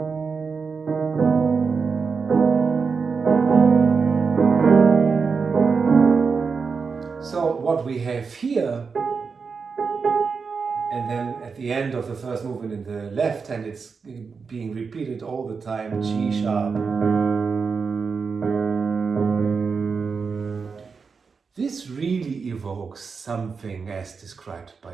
So what we have here, and then at the end of the first movement in the left hand, it's being repeated all the time, G sharp. This really evokes something as described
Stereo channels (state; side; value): quieter; left; 5.2 dB